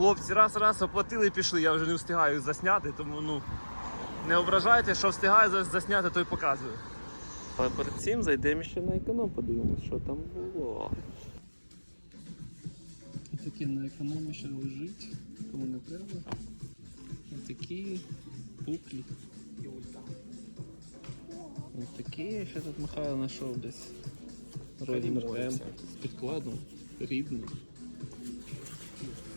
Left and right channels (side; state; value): both; inverted; correlation -1.00